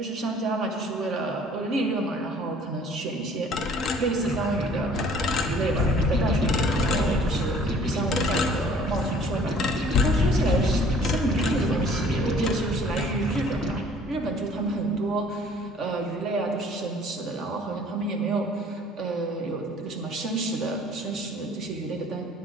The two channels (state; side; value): normal; both; correlation 0.53